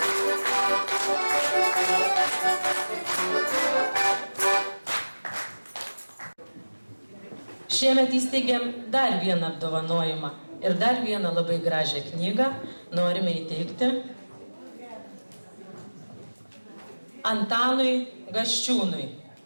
Šiemet įsteigėm dar vieną apdovanojimą ir dar vieną labai gražią knygą norime įteikti Antanui Gaščiūnui,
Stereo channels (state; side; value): inverted; both; correlation -1.00